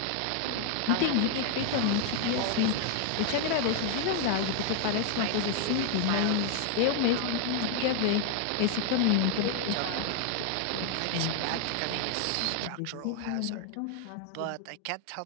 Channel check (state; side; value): different; both; correlation 0.00